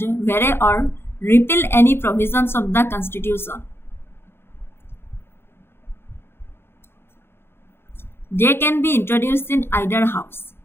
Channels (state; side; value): late; right; 0.11 ms